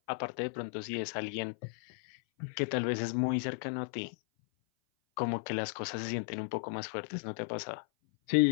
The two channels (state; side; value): silent; right; 54 dB below the other